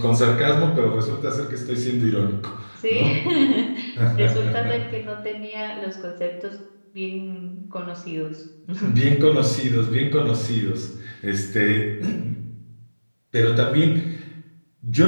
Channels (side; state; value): both; inverted; correlation -1.00